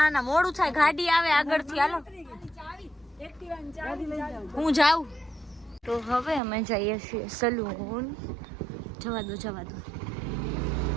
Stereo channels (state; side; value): drops out; left; at 6.4 s